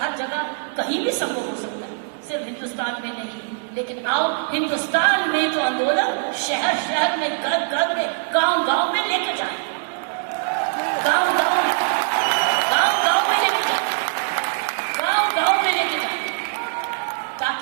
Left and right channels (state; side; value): silent; left; digital silence